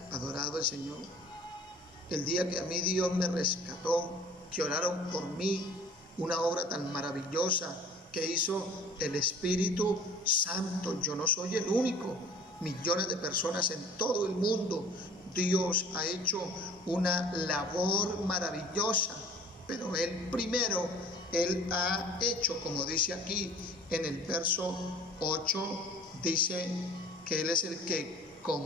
adorado el Señor. El día que a mí Dios me rescató, que oraron por mí, una obra tan maravillosa que hizo el Espíritu Santo. Yo no soy el único, millones de personas en todo el mundo. Dios ha hecho una labor maravillosa, pero Él primero, Él ha hecho, como dice aquí en el verso 8, dice que Él es el que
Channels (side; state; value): both; normal; correlation 0.47